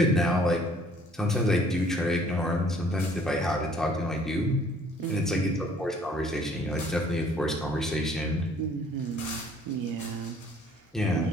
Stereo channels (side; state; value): both; normal; correlation 0.58